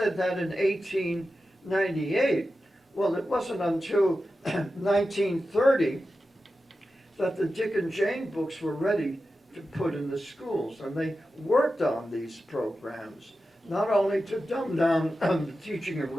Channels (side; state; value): both; normal; correlation 0.92